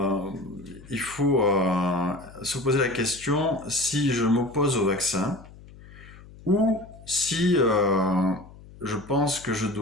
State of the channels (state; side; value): noise; left; hum, 20 dB below the sound